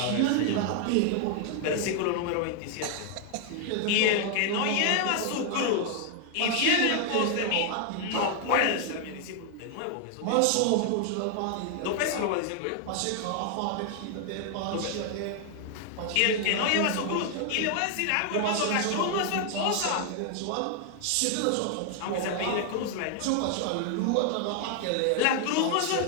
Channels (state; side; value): different; both; correlation 0.00